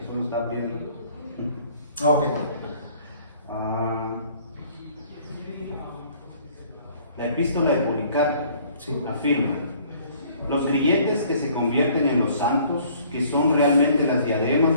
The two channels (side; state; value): both; inverted; correlation -0.57